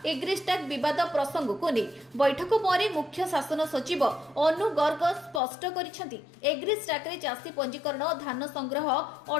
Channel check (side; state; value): right; drops out; at 5.4 s